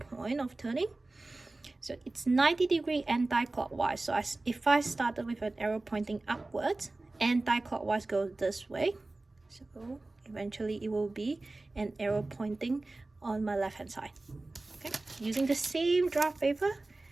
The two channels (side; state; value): left; quieter; 3.1 dB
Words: of turning. So it's 90 degree anti-clockwise. So if I started with an arrow pointing upwards, anti-clockwise goes this way. So eventually it will be an arrow pointing on my left hand side. Okay, using the same draft paper,